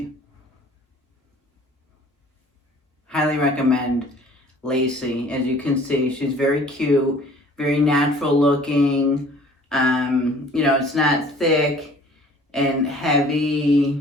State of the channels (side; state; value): both; normal; correlation 0.52